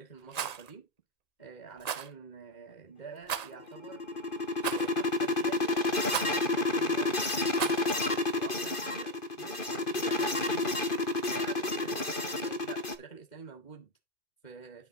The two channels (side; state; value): right; late; 2.5 ms